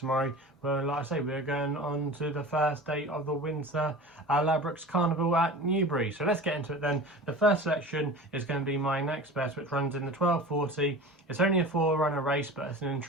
Well, like I say, we're going on to the first day of the Winter Ladbrokes Carnival at Newbury. So let's get into it then. The first selection is going to be my next best, which runs in the 1240. It's only a 4-runner race, but it's an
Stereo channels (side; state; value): both; normal; correlation 0.36